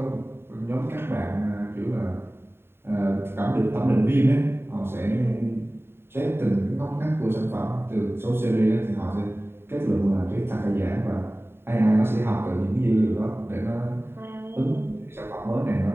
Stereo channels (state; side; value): late; left; 0.11 ms